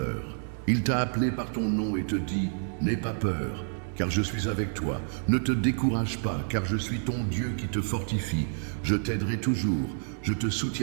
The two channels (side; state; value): left; silent; digital silence